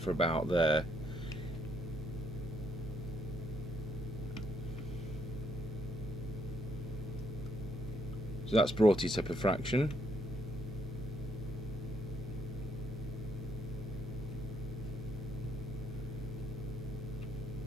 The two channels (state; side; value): normal; both; correlation 0.73